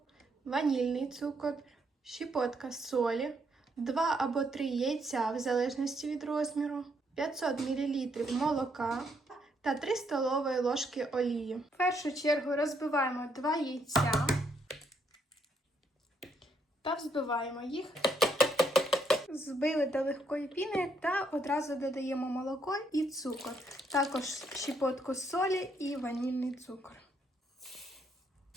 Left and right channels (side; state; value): both; normal; correlation 0.74